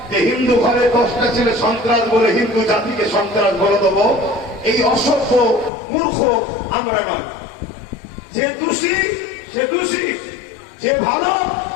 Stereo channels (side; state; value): right; drops out; at 5.7 s